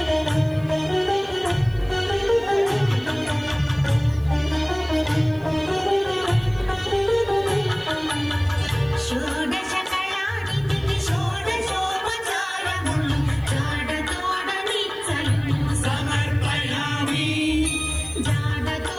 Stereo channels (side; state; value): right; noise; hiss, 30 dB below the sound